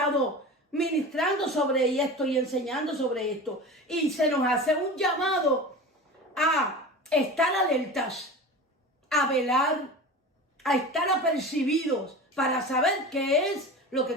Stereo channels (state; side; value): normal; both; correlation 0.32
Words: ministrando sobre esto y enseñando sobre esto. Y se nos hace un llamado a estar alertas, a velar, a estar apercibidos para saber qué es lo que